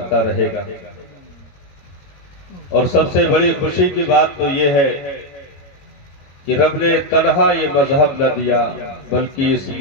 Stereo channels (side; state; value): right; late; 21 ms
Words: رہے گا۔ اور سب سے بڑی خوشی کی بات تو یہ ہے کہ رب نے تنہا یہ مذہب نہ دیا، بلکہ اس